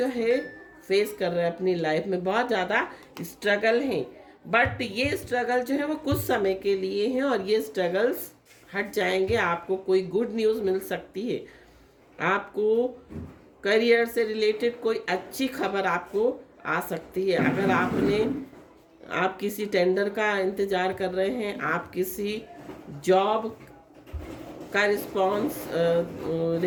है फेस कर रहे हैं अपनी लाइफ में, बहुत ज़्यादा स्ट्रगल हैं। बट ये स्ट्रगल जो है वो कुछ समय के लिए हैं और ये स्ट्रगल्स हट जाएंगे। आपको कोई गुड न्यूज़ मिल सकती है, आपको करियर से रिलेटेड कोई अच्छी खबर आपको आ सकती है। अगर आप किसी टेंडर का इंतज़ार कर रहे हैं, आप किसी जॉब का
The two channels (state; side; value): identical; both; correlation 1.00